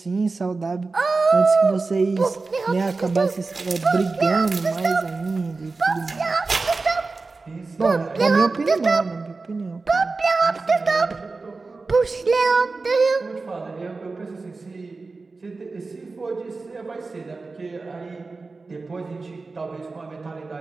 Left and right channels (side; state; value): left; quieter; 3.9 dB